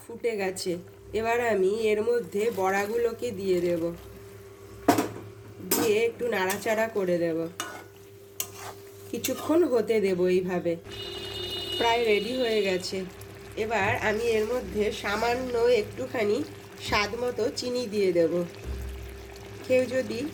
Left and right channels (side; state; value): both; identical; correlation 1.00